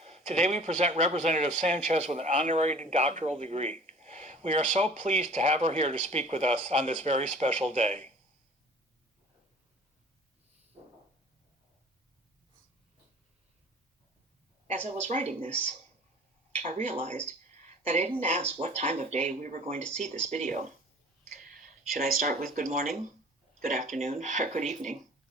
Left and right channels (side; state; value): both; normal; correlation 0.47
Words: Today we present Representative Sanchez with an honorary doctoral degree. We are so pleased to have her here to speak with us on this very special day. As I was writing this, I realized that I didn't ask what time of day we were going to see this video. Should I start with good morning, good afternoon, or good evening?